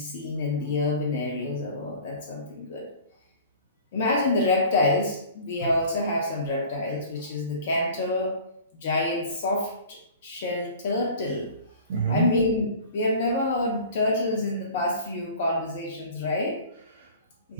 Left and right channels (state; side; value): inverted; both; correlation -0.43